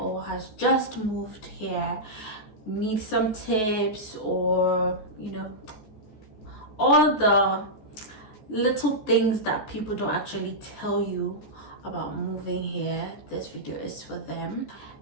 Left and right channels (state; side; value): late; right; 14 ms